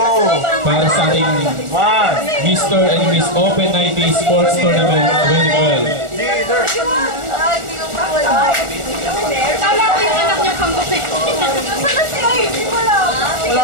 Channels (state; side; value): late; left; 1.4 ms